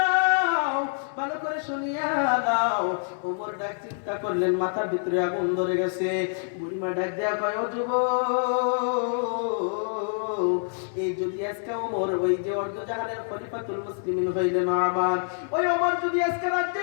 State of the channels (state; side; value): silent; right; 61 dB below the other